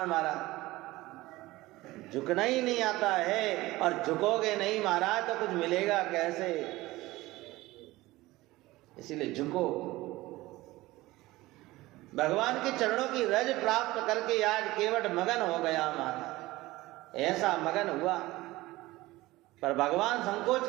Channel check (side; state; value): left; quieter; 18.8 dB